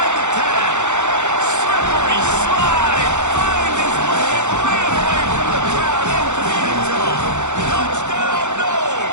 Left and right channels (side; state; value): left; late; 0.84 ms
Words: the 10. Slippery slide. Find his way and ran away from the crowd into the end zone. Touchdown, no.